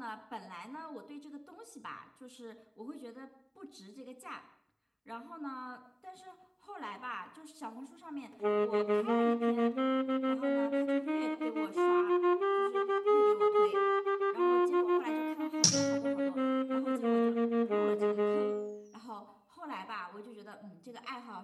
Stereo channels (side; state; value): both; identical; correlation 1.00